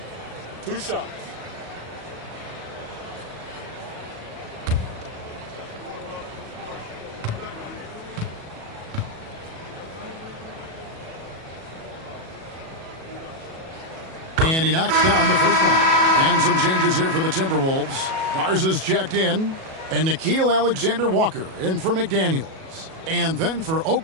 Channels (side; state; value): left; late; 37 ms